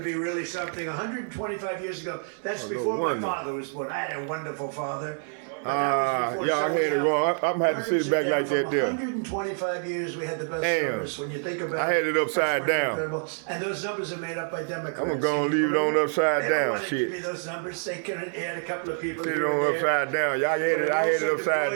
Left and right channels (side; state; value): left; silent; 60 dB below the other